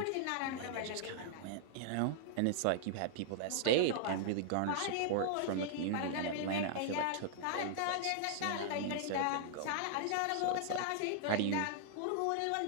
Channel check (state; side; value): different; both; correlation -0.01